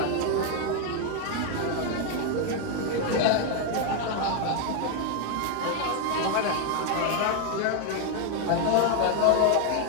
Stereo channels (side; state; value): both; different; correlation 0.00